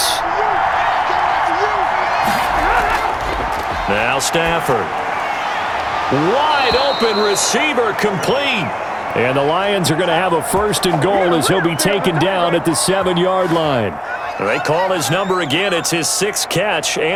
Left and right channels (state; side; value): identical; both; correlation 1.00